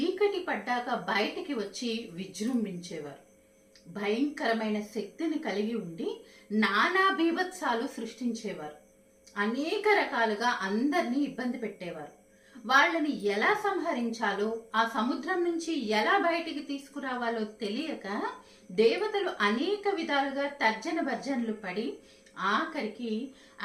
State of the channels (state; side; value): identical; both; correlation 1.00